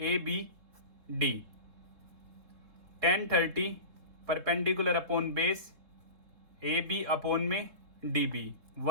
B D, 1030 perpendicular upon base A B upon में D B,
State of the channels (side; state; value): left; late; 3.7 ms